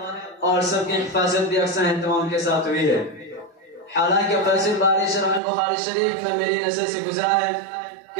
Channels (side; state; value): left; drops out; at 5.4 s